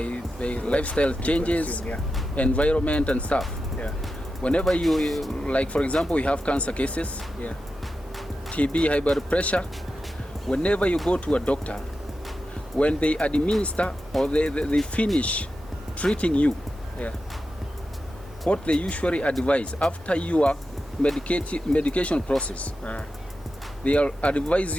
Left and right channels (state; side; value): normal; both; correlation 0.90